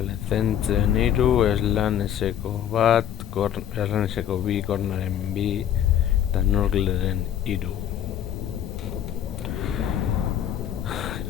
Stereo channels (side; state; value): right; quieter; 10.3 dB